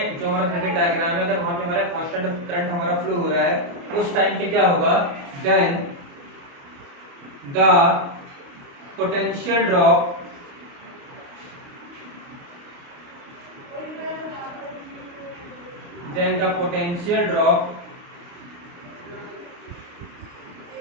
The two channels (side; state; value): left; late; 29 ms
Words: जो हमारा सर्किट डायग्राम है, अगर वहां पे हमारा कांस्टेंट करंट हमारा फ्लो हो रहा है, उस टाइम पे क्या होगा, then the potential drop